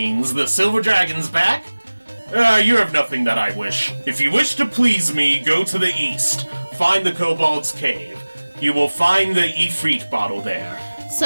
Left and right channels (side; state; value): both; inverted; correlation -1.00